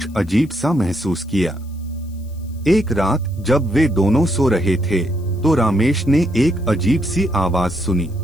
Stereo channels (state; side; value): noise; left; hiss, 29 dB below the sound